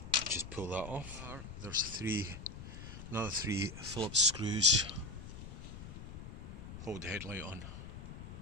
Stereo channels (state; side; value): noise; left; rumble, 11 dB below the sound